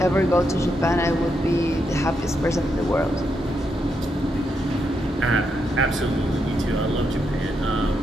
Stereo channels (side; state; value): both; normal; correlation 0.81